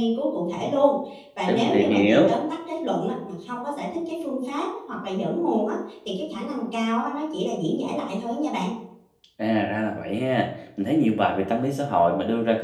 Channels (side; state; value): both; identical; correlation 1.00